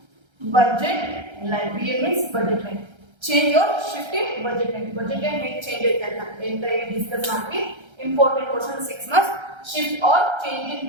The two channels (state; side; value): late; left; 1.3 ms